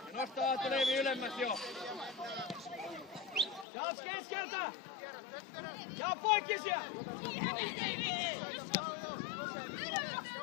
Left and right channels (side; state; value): right; drops out; at 3.7 s